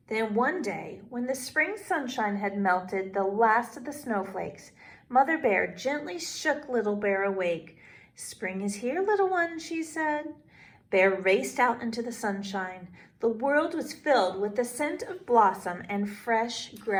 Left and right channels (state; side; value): identical; both; correlation 1.00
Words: Then one day, when the spring sunshine had melted the last of the snowflakes, Mother Bear gently shook Little Bear awake. Spring is here, little one, she said. Bear raced out into the sunshine. The world was filled with the scent of blossom and fresh